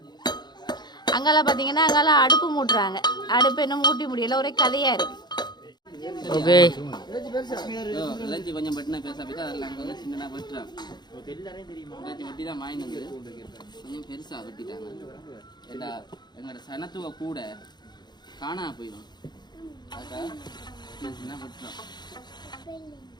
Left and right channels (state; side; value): late; right; 0.21 ms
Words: அங்கெல்லாம் பார்த்தீங்கன்னா அங்கெல்லாம் அடுப்பு மூட்டுறாங்க. அடுப்பு என்ன மூட்டி முடியல. ஒரே கதையா இருக்கு. ஓகே கொஞ்சம் பட்டினா பேச போய் அதெல்லாம் அங்கே வந்து சின்னதாக வெட்டுறாங்க. வெட்டி தான் வாங்கினது கொஞ்சம் பெருசாக வெட்டிட்டாங்க. எல்லா எங்களோட சனத்துவ கூட காணா போயிடும். அதுக்காக சின்ன வெட்டுறோம்.